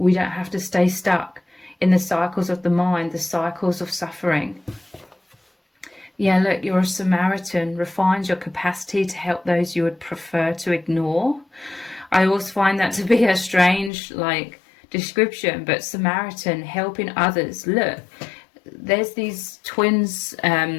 don't have to stay stuck in the cycles of the mind, the cycles of suffering. Yeah, look, you're a Samaritan. Refines your capacity to help those you would prefer to ignore. I always find that to be a strange, description, but Samaritan, helping others. Look, there's these twins,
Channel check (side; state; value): right; drops out; at 13.9 s